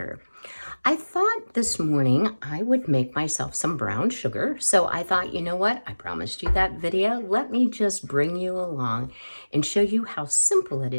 I thought this morning I would make myself some brown sugar. So I thought, you know what? I promised you that video. Let me just bring you along and show you how simple it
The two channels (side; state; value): both; inverted; correlation -1.00